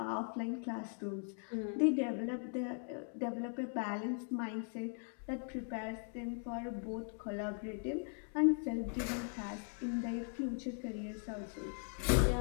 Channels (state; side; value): silent; right; 51 dB below the other